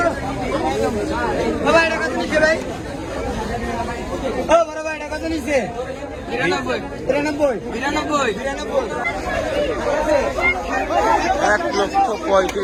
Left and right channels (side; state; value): both; identical; correlation 1.00